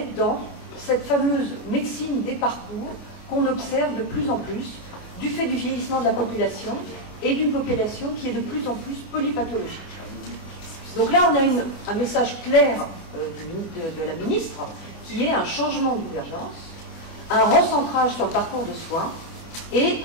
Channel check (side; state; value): right; late; 25 ms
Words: dans cette fameuse médecine des parcours qu'on observe de plus en plus du fait du vieillissement de la population et d'une population qui est de plus en plus polypathologique. Donc là, on a un message clair de la ministre qui est un changement de gouvernance, un recentrage sur le parcours de soins et